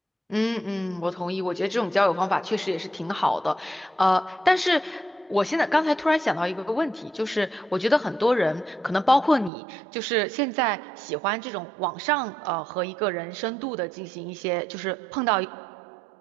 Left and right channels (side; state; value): left; drops out; at 9.5 s